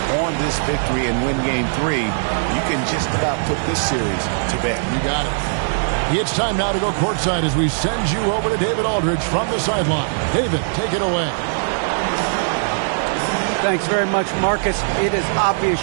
on this victory and win game 3, you can just about put this series to bed. You got it. It's time now to go courtside as we send you over to David Aldridge from the sideline. David, take it away. Thanks very much, Marcus. It is obvious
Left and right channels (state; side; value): silent; left; 65 dB below the other